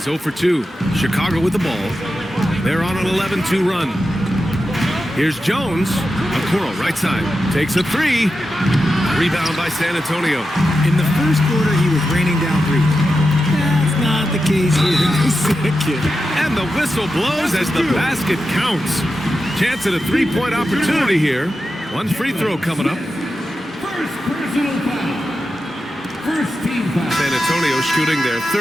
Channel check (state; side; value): normal; both; correlation 0.90